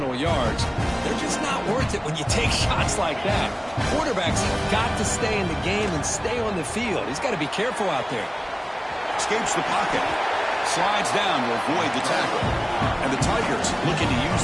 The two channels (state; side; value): identical; both; correlation 1.00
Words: yards. They're just not worth it when you take shots like that. Quarterbacks have got to stay in the game and stay on the field. He's got to be careful out there. Escapes the pocket. Slides down to avoid the tackle. And the Tigers looking to use